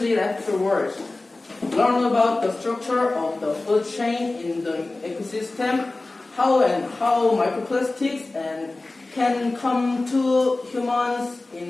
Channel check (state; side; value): quieter; right; 3.1 dB